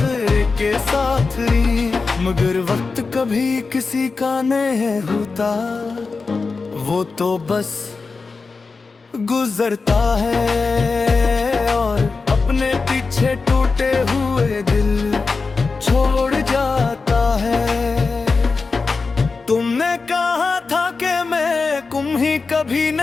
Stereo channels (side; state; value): right; quieter; 4.3 dB